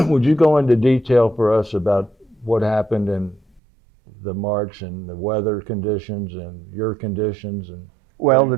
Would you go into detail for us about what happened in the march and the weather conditions and your conditions? And Well, the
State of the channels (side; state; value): left; drops out; at 3.6 s